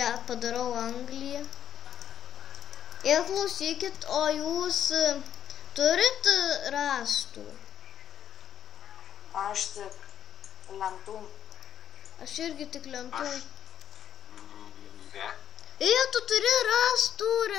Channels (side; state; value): right; quieter; 9.6 dB